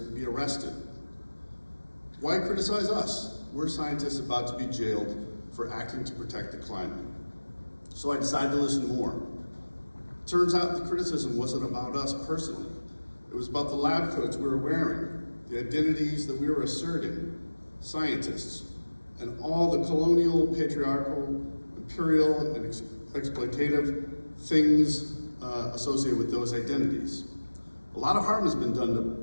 be arrested. Why criticize us? We're scientists about to be jailed for acting to protect the climate. So I decided to listen more. Turns out the criticism wasn't about us personally. It was about the lab coats we were wearing, the identities that we were asserting, scientists, and all the colonial, patriarchal, imperial, and exploitative things associated with those identities. A lot of harm has been done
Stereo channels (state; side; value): inverted; both; correlation -1.00